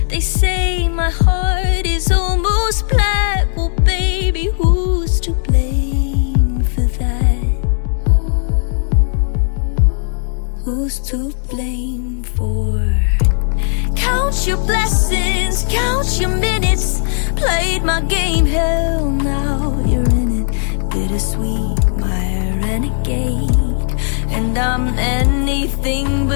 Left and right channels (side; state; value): right; silent; digital silence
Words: They say my heart is almost black. Well, baby, who's to blame for that? Who's to blame for? Count your blessings, count your minutes. Played my game, hell, now you're in it. Bittersweet, my renegade. And I'm anything